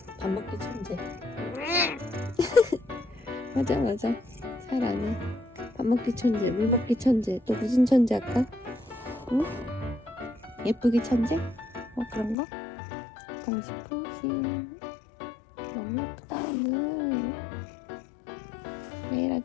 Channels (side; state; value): right; drops out; at 12.4 s